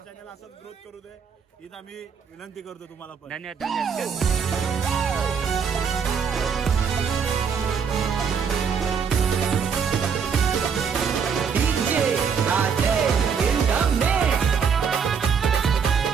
असंच ग्रोथ करू दे हीच आम्ही विनंती करतो तुम्हाला पण. धन्यवाद धन्यवाद.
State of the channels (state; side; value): quieter; left; 6.5 dB